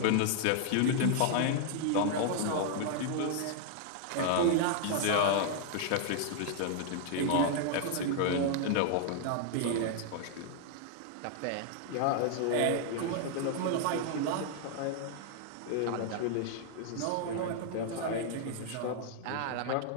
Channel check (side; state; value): both; different; correlation 0.00